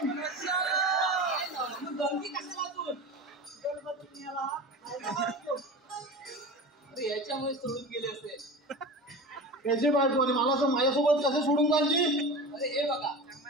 गंगी कशाला तू? गणपती याला अरे याच्यामुळे सोडून गेले असेल. त्याची बायको आणि मला असं माझ्यासोबत कसं सोडून जायची? अरे हे बघा,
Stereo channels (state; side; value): normal; both; correlation 0.31